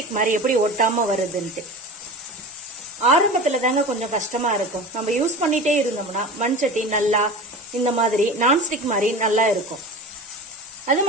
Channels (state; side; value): normal; both; correlation 0.32